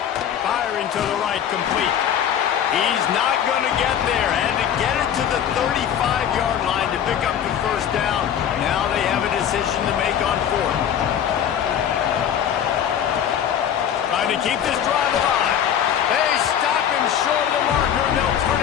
Firing to the right, complete. He's not going to get there. Had to get it to the 35-yard line to pick up the first down. Now they have a decision to make on 4th. Trying to keep this drive alive. They stop him short of the marker, and they'll turn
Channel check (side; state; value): right; quieter; 9.3 dB